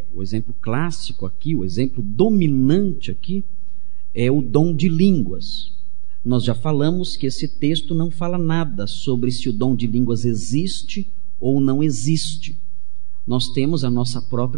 o exemplo clássico aqui, o exemplo dominante aqui, é o dom de línguas. Nós já falamos que esse texto não fala nada sobre se o dom de línguas existe ou não existe. Nós temos a nossa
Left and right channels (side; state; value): left; silent; 68 dB below the other